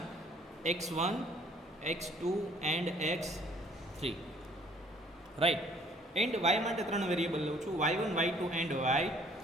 x1 x2 and x3, right. And Y માટે ત્રણ વેરિયેબલ લઉં છું, y1 y2 and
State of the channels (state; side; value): normal; both; correlation 0.58